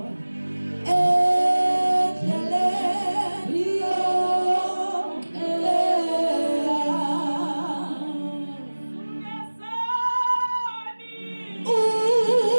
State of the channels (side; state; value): both; inverted; correlation -1.00